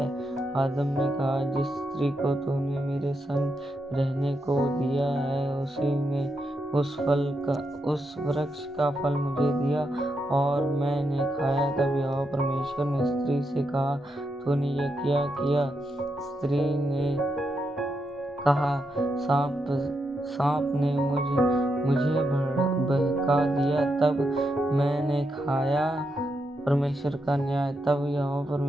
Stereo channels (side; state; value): both; normal; correlation 0.83